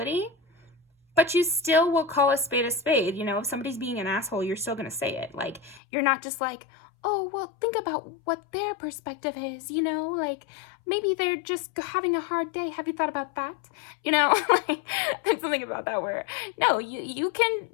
but you still will call a spade a spade. You know, if somebody's being an asshole, you're still going to say it. Like, you're not just like, oh, well, think about what their perspective is, you know, like maybe they're just having a hard day. Have you thought about that? You know, like there's something about that where, no, you can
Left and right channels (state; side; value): drops out; right; at 5.8 s